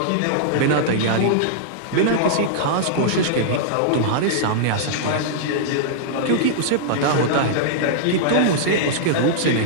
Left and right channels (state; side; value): different; both; correlation -0.02